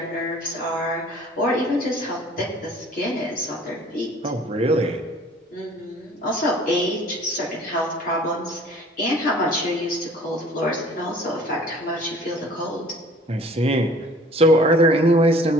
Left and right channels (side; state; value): both; normal; correlation 0.51